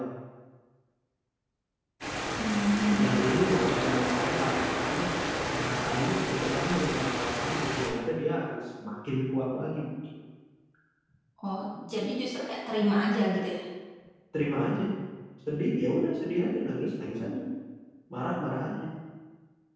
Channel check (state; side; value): identical; both; correlation 1.00